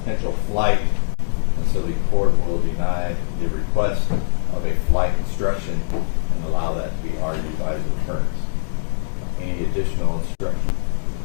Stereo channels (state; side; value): silent; right; digital silence